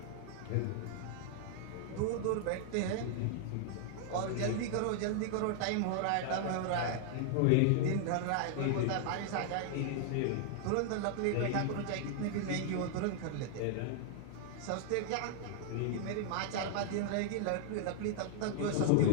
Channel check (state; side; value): different; both; correlation 0.00